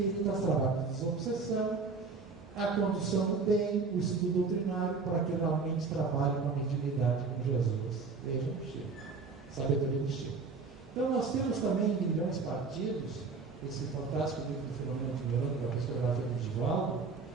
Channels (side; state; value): left; quieter; 4.5 dB